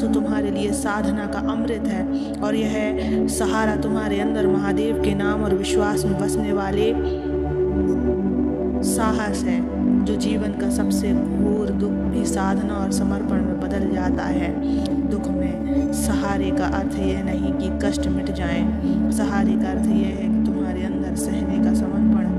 तुम्हारे लिए साधना का अमृत है और यह सहारा तुम्हारे अंदर महादेव के नाम और विश्वास में बसने वाले साहस है, जो जीवन का सबसे घोर दुख भी साधना और समर्पण में बदल जाता है। दुख में सहारे का अर्थ यह नहीं कि कष्ट मिट जाए, सहारे का अर्थ यह है कि तुम्हारे अंदर सहने का समर्पण,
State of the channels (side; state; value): both; identical; correlation 1.00